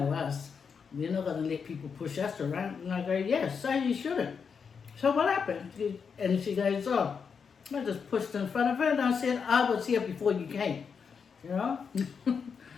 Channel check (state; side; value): quieter; right; 6.1 dB